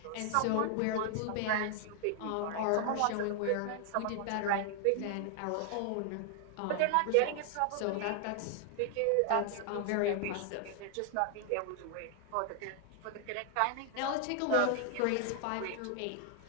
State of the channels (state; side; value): different; both; correlation 0.00